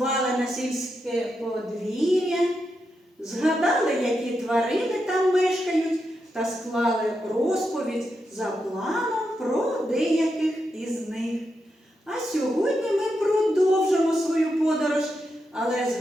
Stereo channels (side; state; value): both; normal; correlation 0.85